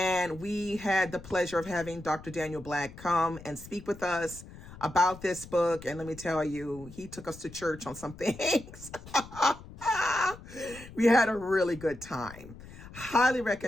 we had the pleasure of having Dr. Daniel Black come and speak with us about this book. And let me tell you, he took us to church on some things. We had a really good time. Highly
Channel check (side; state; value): left; noise; rumble, 17 dB below the sound